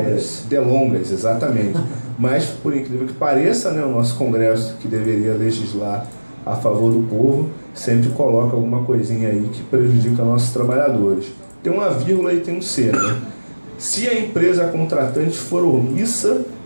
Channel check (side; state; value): both; inverted; correlation -1.00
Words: delongas, exatamente. Mas, por incrível que pareça, né, o nosso Congresso, que deveria legislar a favor do povo, sempre coloca alguma coisinha aí que prejudica nossos trabalhadores. Tem uma vírgula e tem um C, né? Se a empresa contratante for omissa